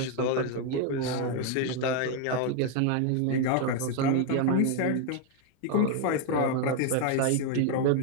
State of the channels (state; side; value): different; both; correlation 0.01